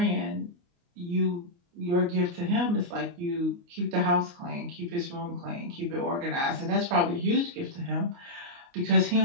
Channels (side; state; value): left; late; 29 ms